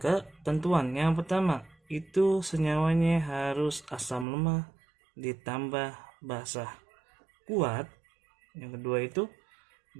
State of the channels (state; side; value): drops out; left; at 4.2 s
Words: ketentuan. Yang pertama, itu senyawanya harus asam lemah ditambah basa kuat. Yang kedua itu